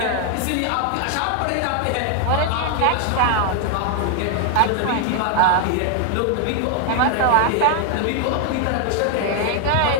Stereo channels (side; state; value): both; different; correlation 0.00